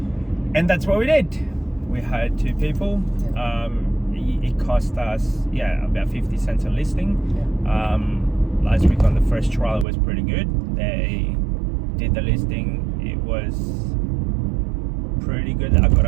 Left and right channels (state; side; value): drops out; left; at 9.9 s